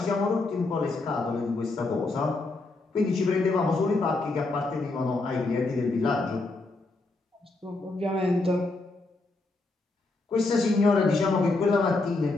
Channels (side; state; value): right; quieter; 3.3 dB